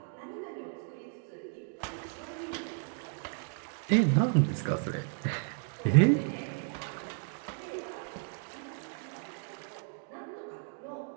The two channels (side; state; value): left; silent; 55 dB below the other